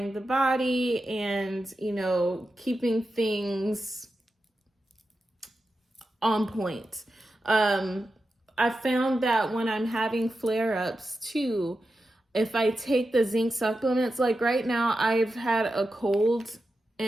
the body and, keeping things on point. I found that when I'm having flare-ups too, if I take the zinc supplements, like right now I've had a cold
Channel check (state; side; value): normal; both; correlation 0.90